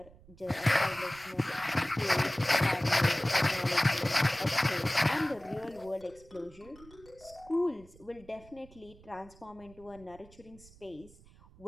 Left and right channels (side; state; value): right; noise; rumble, 23 dB below the sound